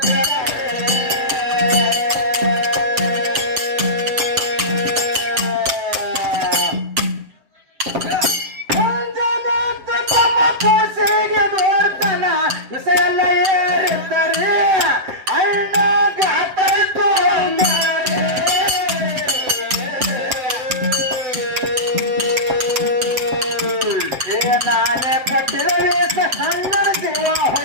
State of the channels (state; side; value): late; left; 7.4 ms